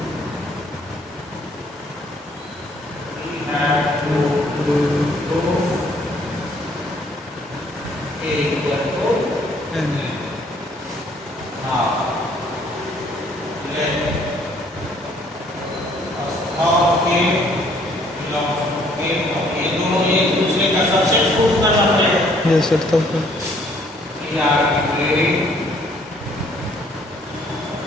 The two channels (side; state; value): both; normal; correlation 0.63